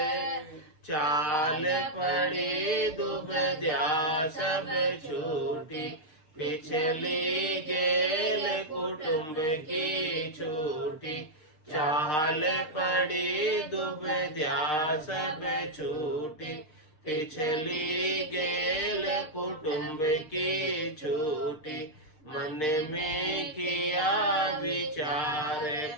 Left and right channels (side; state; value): right; late; 6.6 ms